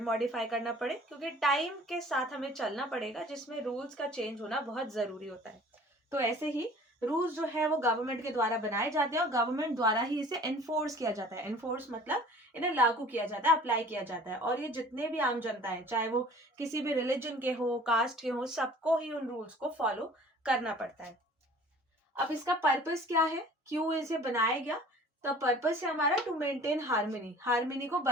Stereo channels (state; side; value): normal; both; correlation 0.48